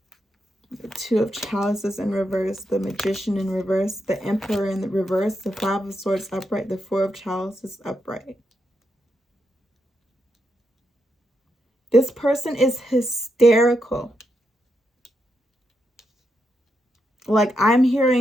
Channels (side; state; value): both; normal; correlation 0.83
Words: The Two of Chalices in reverse, the Magician in reverse, the Emperor in the reverse, the Five of Swords upright, the Four of Chalices upright. This person is hysterical. Like, I'm